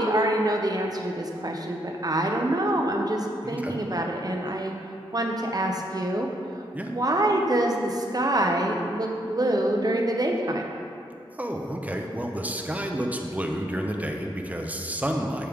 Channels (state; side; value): normal; both; correlation 0.72